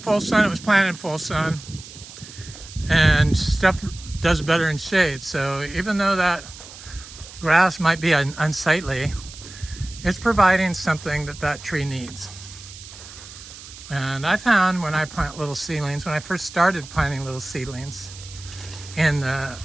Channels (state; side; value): noise; right; hiss, 16 dB below the sound